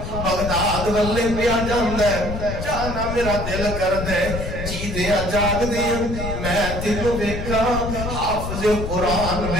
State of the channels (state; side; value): noise; left; rumble, 5 dB below the sound